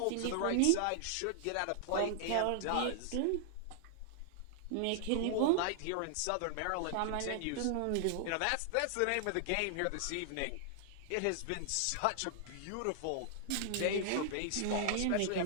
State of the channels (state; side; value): different; both; correlation 0.00